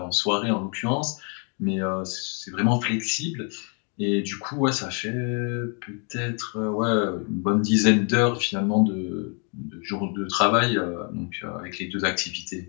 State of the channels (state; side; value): quieter; right; 39.3 dB